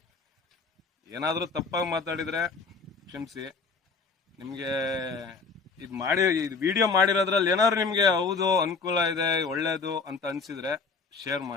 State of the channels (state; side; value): quieter; right; 4.6 dB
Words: ಏನಾದ್ರೂ ತಪ್ಪಾಗಿ ಮಾತಾಡಿದ್ರೆ ಕ್ಷಮಿಸಿ. ನಿಮ್ಗೆ ಇದು ವಿಡಿಯೋ ಮಾಡಿರೋದ್ರಲ್ಲಿ ಏನಾದ್ರು ನಿಮ್ಗೆ ಹೌದು ಅನುಕೂಲ ಇದೆ ಒಳ್ಳೇದು ಅಂತ ಅನ್ಸಿದ್ರೆ ಶೇರ್